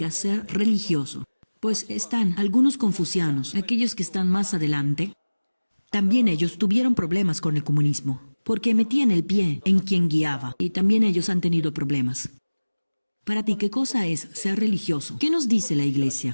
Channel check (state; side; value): inverted; both; correlation -1.00